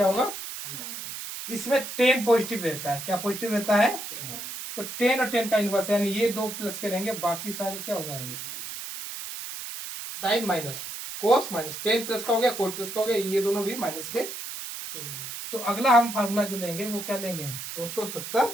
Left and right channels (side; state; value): right; noise; hiss, 8 dB below the sound